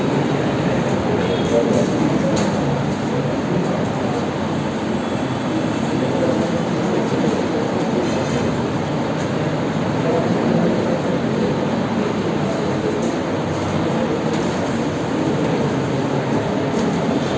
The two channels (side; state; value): both; identical; correlation 1.00